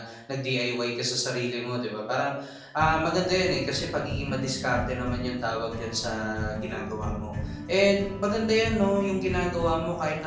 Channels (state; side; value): identical; both; correlation 1.00